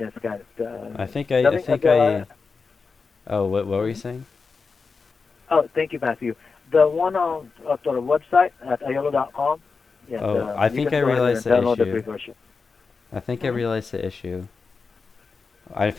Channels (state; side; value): quieter; right; 4.8 dB